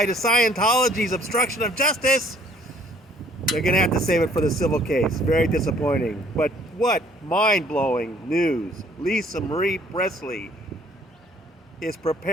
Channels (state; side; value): normal; both; correlation 0.59